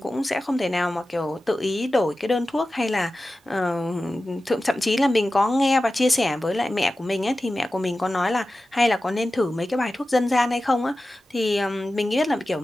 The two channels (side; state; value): both; normal; correlation 0.95